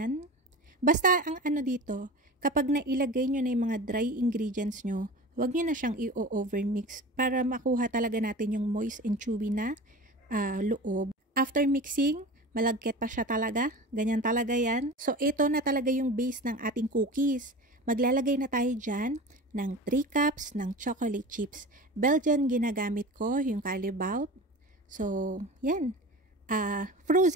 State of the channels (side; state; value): both; normal; correlation 0.34